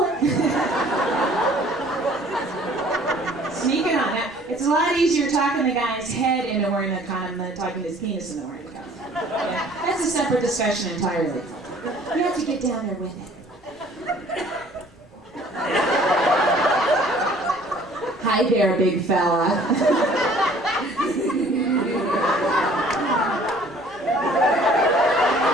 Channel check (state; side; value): normal; both; correlation 0.54